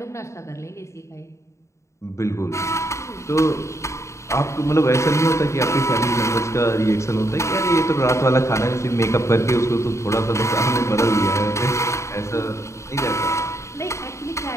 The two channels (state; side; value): late; right; 0.14 ms